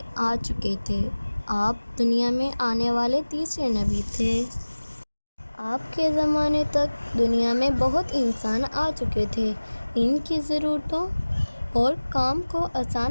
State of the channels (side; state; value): both; inverted; correlation -1.00